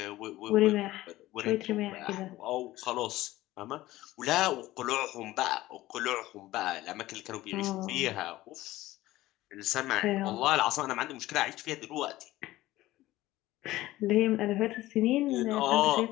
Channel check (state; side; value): quieter; right; 16.7 dB